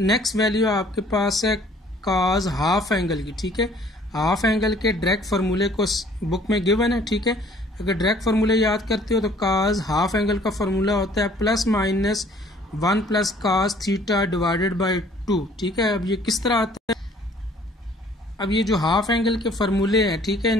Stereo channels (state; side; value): normal; both; correlation 0.56